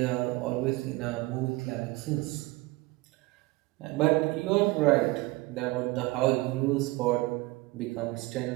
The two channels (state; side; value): quieter; left; 21.6 dB